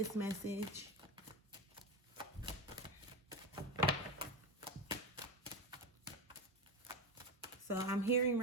message. So I'm hearing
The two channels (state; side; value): normal; both; correlation 0.19